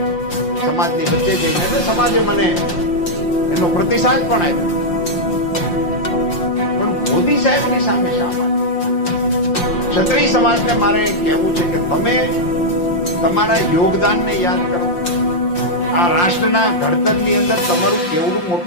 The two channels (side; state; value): right; late; 5.7 ms